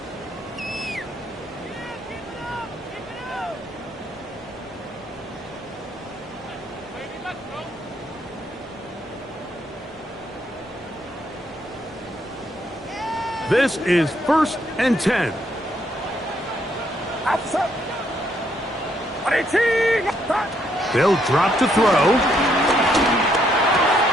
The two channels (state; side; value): normal; both; correlation 0.72